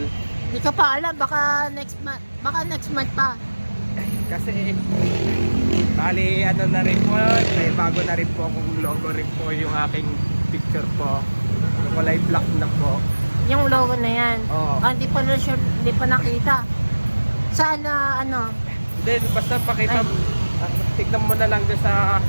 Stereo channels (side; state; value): both; inverted; correlation -1.00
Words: Hindi ko pa alam, baka next month pa. Kasi... Bali, na rin po, may bago na rin po akong logo rin po yung aking picture po. Kulay black na po. Yung logo na yan. Oo. Hindi pa nakita. Saan Then, basta pakita, tignan mo na lang doon sa